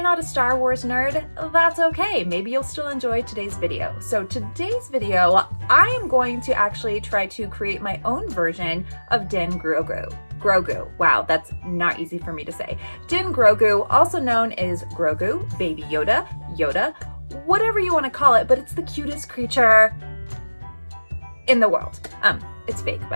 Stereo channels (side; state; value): both; inverted; correlation -1.00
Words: not a Star Wars nerd, that's okay. Maybe you'll still enjoy today's video. So today's video, I am going to actually try to create my own version of Din Grogu. Grogu. Wow, that's not easy for me to say. Din Grogu, also known as Grogu, Baby Yoda, Yoda, whatever you want to call it, but it's the cutest creature in the world. It's fake,